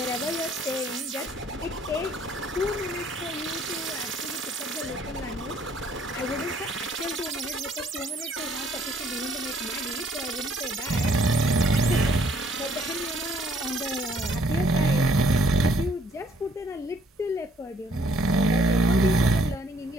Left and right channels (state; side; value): normal; both; correlation 0.64